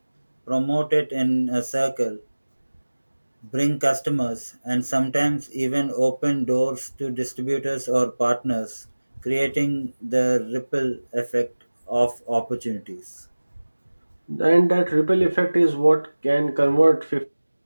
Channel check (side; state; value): both; inverted; correlation -1.00